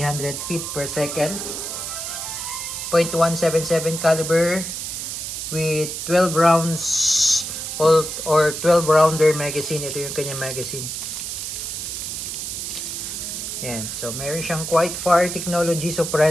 feet per second. .177 caliber with 12 rounds or 12 rounder magazine. Ito yung kanyang magazine. Yan. So, meron siyang Quiet Fire Technology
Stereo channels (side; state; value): right; noise; hiss, 5 dB below the sound